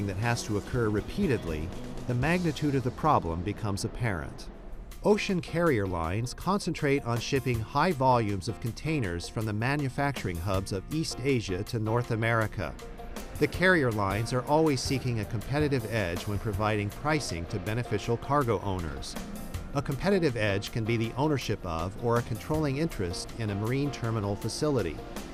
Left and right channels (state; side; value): identical; both; correlation 1.00